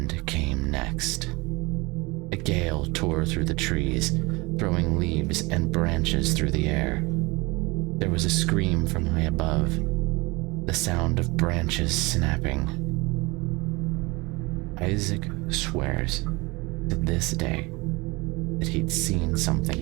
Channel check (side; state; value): left; quieter; 24.6 dB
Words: came next. A gale tore through the trees, throwing leaves and branches through the air. There was a scream from high above, the sound of branches snapping. Isaac swears to this day that he'd seen something